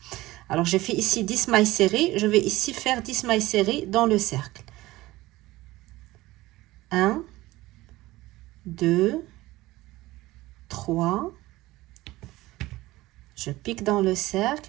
Alors, j'ai fait ici 10 mailles serrées, je vais ici faire 10 mailles serrées dans le cercle. 1, 2, 3, je pique dans le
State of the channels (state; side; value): quieter; left; 18.3 dB